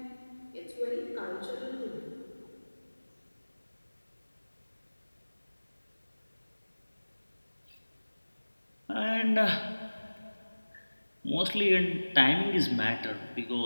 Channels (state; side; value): inverted; both; correlation -1.00